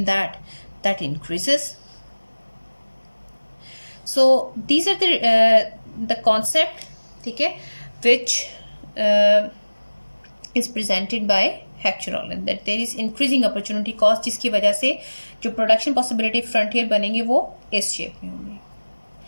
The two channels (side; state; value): both; inverted; correlation -1.00